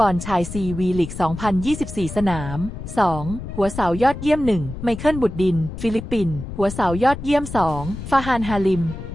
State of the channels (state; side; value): noise; left; rumble, 9 dB below the sound